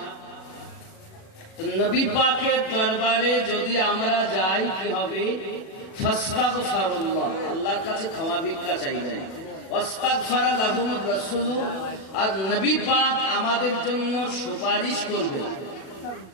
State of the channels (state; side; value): late; right; 37 ms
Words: তো নবী পাকের দরবারে যদি আমরা যাই, কি হবে? ফাস্তাগফিরুল্লাহ, আল্লাহর কাছে ক্ষমা ভিক্ষা চাইবেন। ওয়াস্তাগফারা লাহুমুর রাসূল, আর নবী পাক আমাদের জন্য সুপারিশ করবেন।